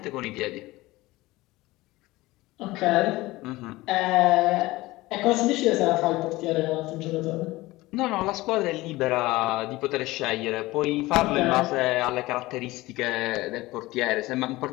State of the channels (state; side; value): quieter; right; 19.4 dB